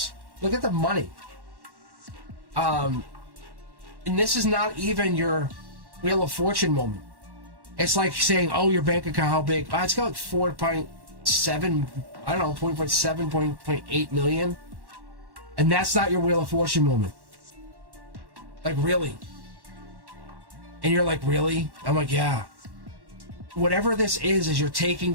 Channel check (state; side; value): late; left; 1.1 ms